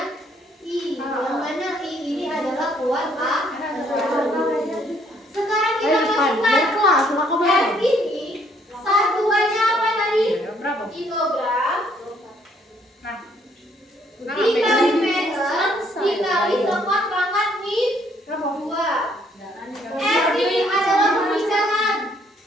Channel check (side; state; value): both; normal; correlation 0.66